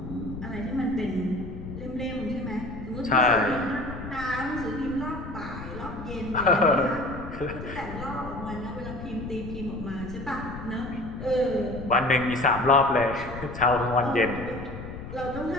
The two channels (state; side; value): noise; left; rumble, 10 dB below the sound